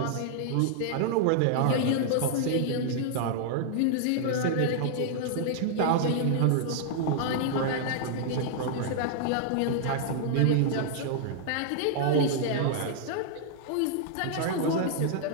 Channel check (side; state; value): both; different; correlation -0.01